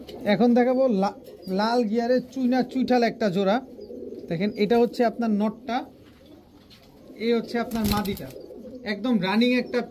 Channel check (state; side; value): identical; both; correlation 1.00